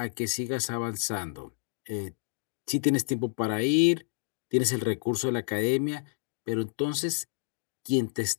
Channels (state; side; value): silent; right; digital silence